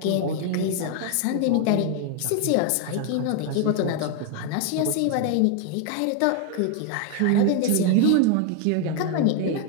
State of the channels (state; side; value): different; both; correlation 0.00